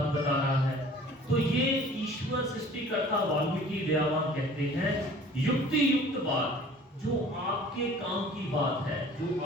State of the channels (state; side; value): normal; both; correlation 0.48